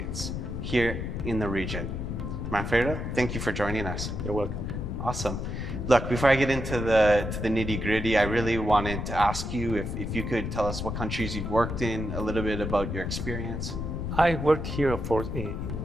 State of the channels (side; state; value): left; noise; rumble, 4 dB below the sound